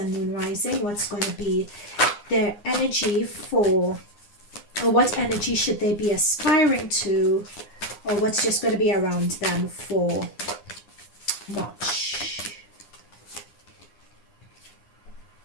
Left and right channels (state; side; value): late; right; 9.7 ms